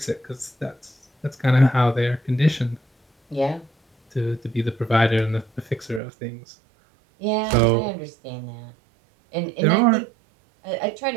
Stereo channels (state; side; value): drops out; left; at 6.0 s